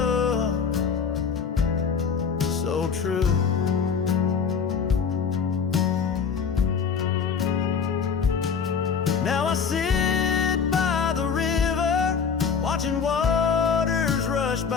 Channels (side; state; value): right; quieter; 6.2 dB